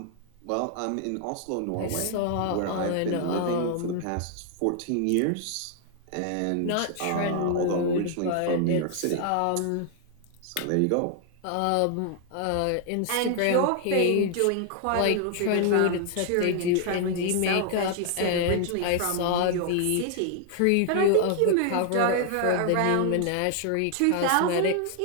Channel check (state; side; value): different; both; correlation 0.00